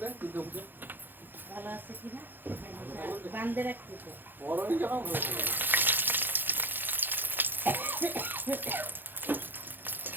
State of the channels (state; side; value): late; left; 0.093 ms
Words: কিন্তু পুজো ভালো আছে কিনা বান্ধে রাখছি তো। বড়ই যখন ভালো করে